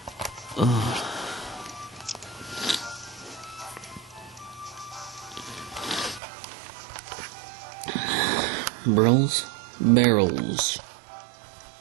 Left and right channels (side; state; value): left; drops out; at 6.2 s